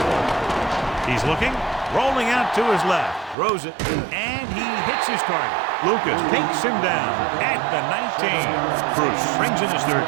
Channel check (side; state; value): left; drops out; at 3.4 s